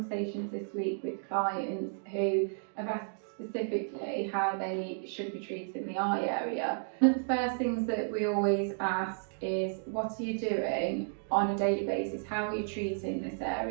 this week with clients who have asked specifically how they should be treating the eye area. One of the first things that we always ask is, what are you doing on a daily basis? How are you treating this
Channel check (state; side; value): silent; left; digital silence